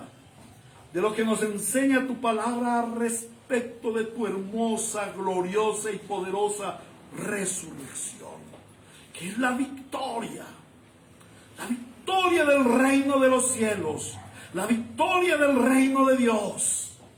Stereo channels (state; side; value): identical; both; correlation 1.00